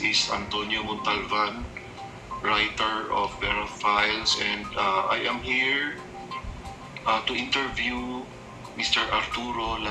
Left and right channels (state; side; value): identical; both; correlation 1.00